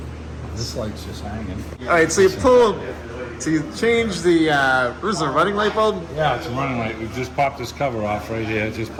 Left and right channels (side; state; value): both; identical; correlation 1.00